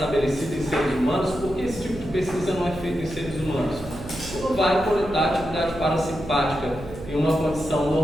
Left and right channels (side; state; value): right; noise; hum, 12 dB below the sound